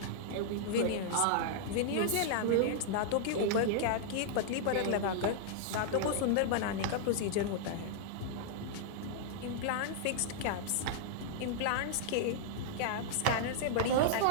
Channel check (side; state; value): both; different; correlation -0.01